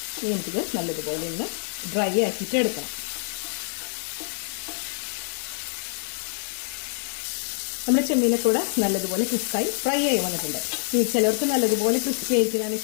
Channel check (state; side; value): silent; right; 61 dB below the other